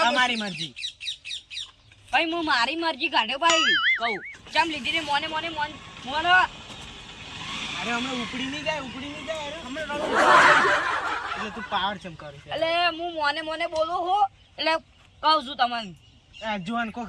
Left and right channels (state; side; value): identical; both; correlation 1.00